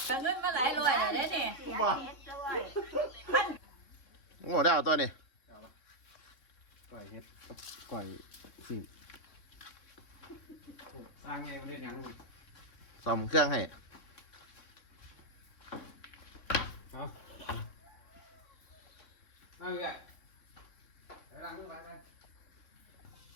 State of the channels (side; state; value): right; late; 3.6 ms